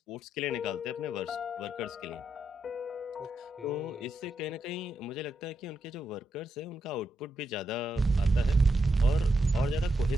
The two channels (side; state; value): both; normal; correlation 0.83